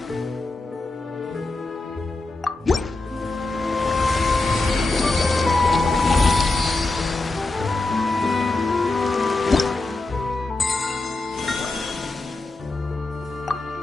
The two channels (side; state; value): right; quieter; 3.2 dB